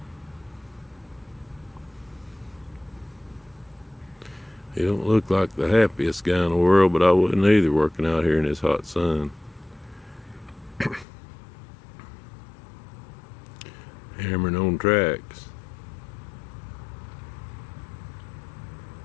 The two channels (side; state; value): right; drops out; at 11.1 s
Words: He don't look like the happiest guy in the world, but I wouldn't either working out here in this hot sun. Hammering on tracks.